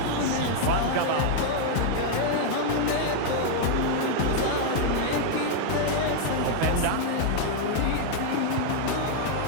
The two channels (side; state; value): both; different; correlation 0.00